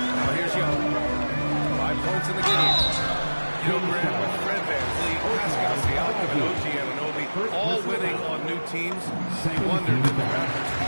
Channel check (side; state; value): both; inverted; correlation -1.00